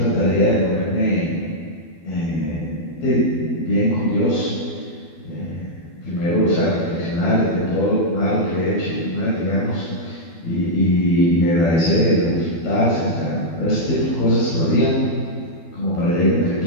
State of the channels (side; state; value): right; late; 12 ms